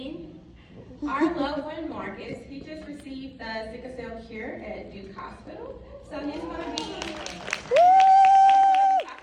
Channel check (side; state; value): both; identical; correlation 1.00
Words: our loved one Marcus, he just received the sickle cell cure at Duke Hospital. So he's going to be